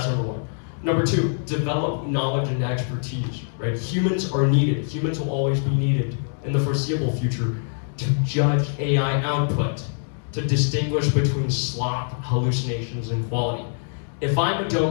number 1. Number 2, develop knowledge and expertise, right? Humans are needed. Humans will always be needed in the foreseeable future to judge AI output, to distinguish between slop, hallucinations, and quality. If I'm a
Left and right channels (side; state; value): right; silent; digital silence